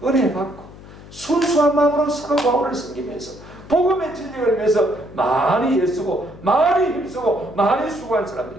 은혜 받고 순수한 마음으로 사도 바울을 섬기면서 복음의 진리를 위해서 많이 애쓰고 많이 힘쓰고 많이 수고한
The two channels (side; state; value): left; noise; hum, 18 dB below the sound